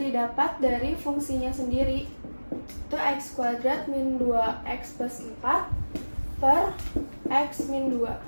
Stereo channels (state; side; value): inverted; both; correlation -1.00